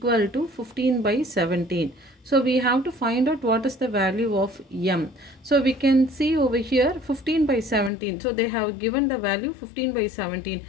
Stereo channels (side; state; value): right; drops out; at 7.9 s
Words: to 15 by 17. So we have to find out what is the value of m. So we can see over here 15 by 17. So they have given the value 15 by 17,